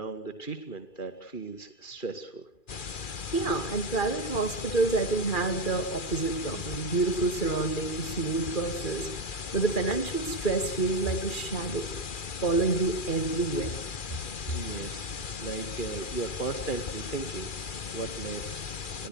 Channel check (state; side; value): late; right; 2.4 ms